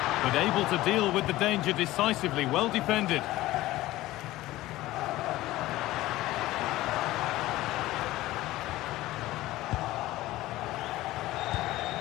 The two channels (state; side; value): quieter; right; 16.9 dB